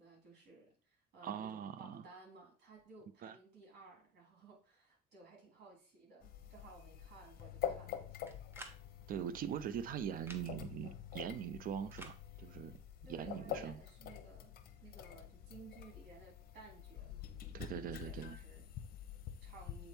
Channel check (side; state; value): both; normal; correlation 0.20